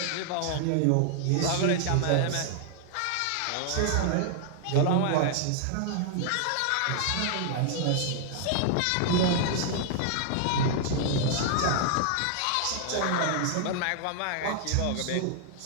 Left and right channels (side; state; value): both; different; correlation -0.01